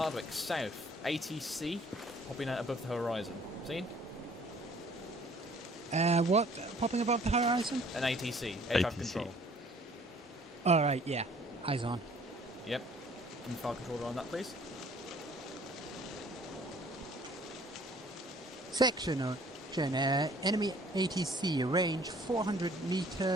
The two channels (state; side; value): normal; both; correlation 0.56